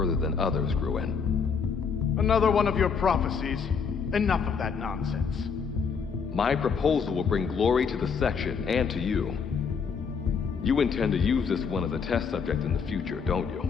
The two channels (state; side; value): quieter; right; 6.0 dB